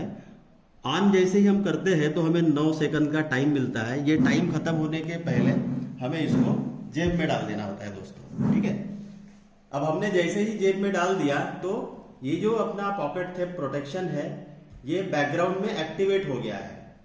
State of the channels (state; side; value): identical; both; correlation 1.00